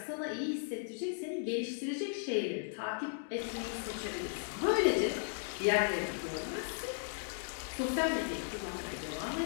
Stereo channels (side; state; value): right; silent; digital silence